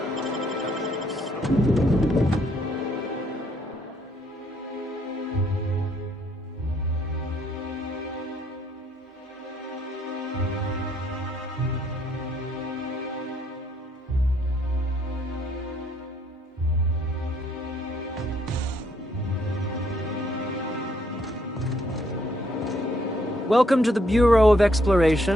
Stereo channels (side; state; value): both; normal; correlation 0.69